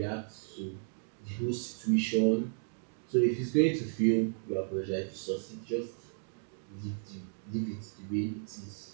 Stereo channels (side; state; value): left; silent; digital silence